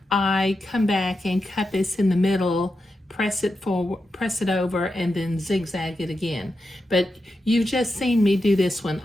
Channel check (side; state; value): both; normal; correlation 0.88